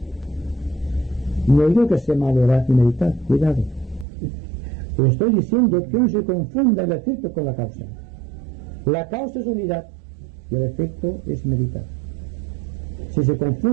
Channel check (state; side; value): drops out; left; at 4.0 s